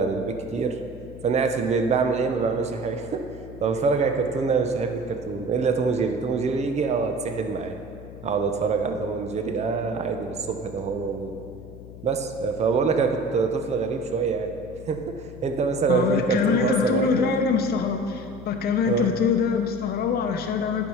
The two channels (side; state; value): left; noise; hum, 15 dB below the sound